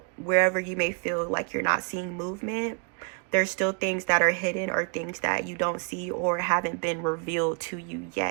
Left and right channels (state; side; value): quieter; left; 39.0 dB